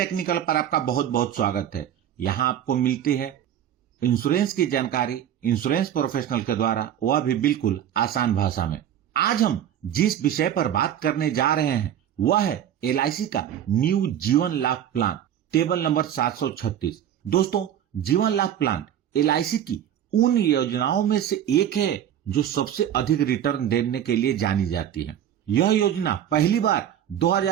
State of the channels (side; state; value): left; quieter; 10.4 dB